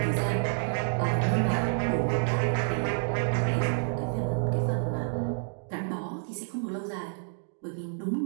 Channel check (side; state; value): left; silent; digital silence